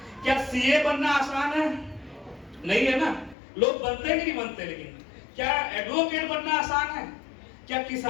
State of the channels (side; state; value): right; drops out; at 3.4 s